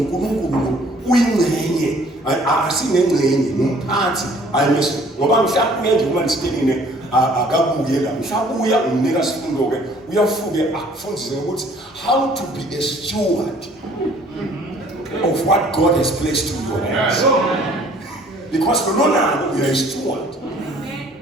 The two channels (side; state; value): both; normal; correlation 0.56